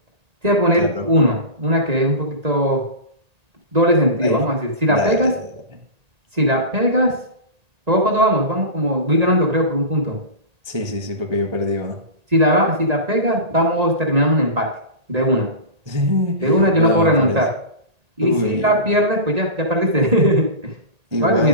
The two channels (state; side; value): late; left; 1.8 ms